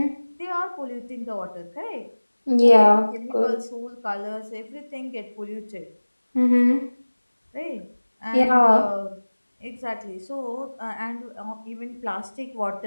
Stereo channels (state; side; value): inverted; both; correlation -1.00